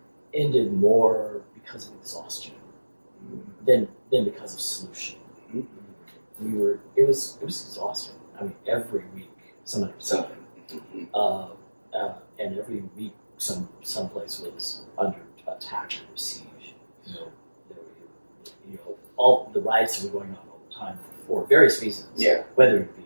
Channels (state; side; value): inverted; both; correlation -1.00